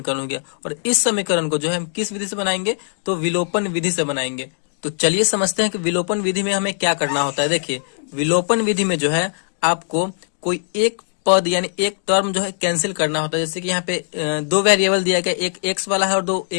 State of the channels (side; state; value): right; silent; digital silence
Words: हो गया। और इस समीकरण को जो है हम किस विधि से बनाएंगे, तो विलोपन विधि से बनाएंगे। तो चलिए समझते हैं कि विलोपन विधि में हमें क्या करना होता है। देखिए, विलोपन विधि में जो है आपको कोई एक पद यानी एक टर्म जो है कैंसिल करना होता है। जैसे कि यहाँ पे दो वेरिएबल दिया गया, एक x वाला है और